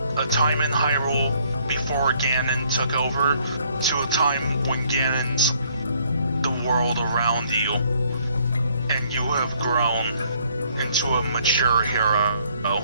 a time in Hyrule before Ganon took over to a time when Ganon's the world around you, and you have grown into a mature hero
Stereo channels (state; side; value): inverted; both; correlation -0.65